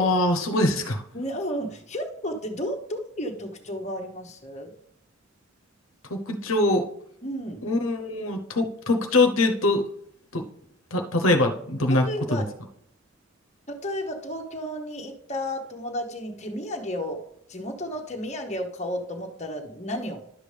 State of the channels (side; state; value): both; normal; correlation 0.40